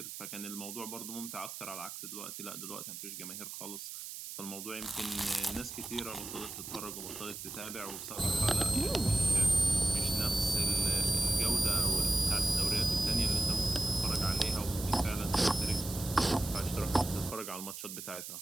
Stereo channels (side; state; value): right; noise; hiss, 9 dB below the sound